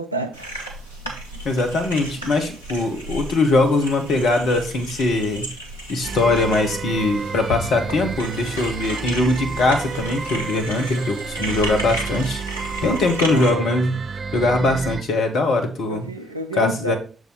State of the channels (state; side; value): normal; both; correlation 0.63